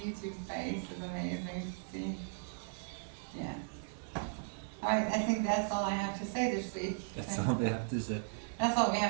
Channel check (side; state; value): left; silent; digital silence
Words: face is amazing to see. Yeah. Alright, I think that's all I have to say this week. That's all we have to say. That's all we